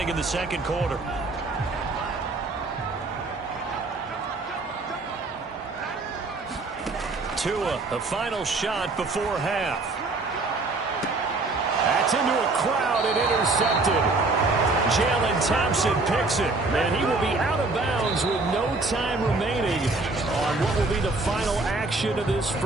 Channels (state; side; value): quieter; left; 3.4 dB